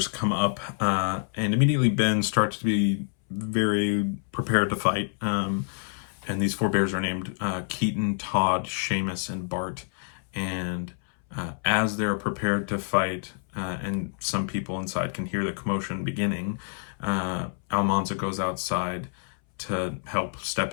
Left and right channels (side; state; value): right; silent; 60 dB below the other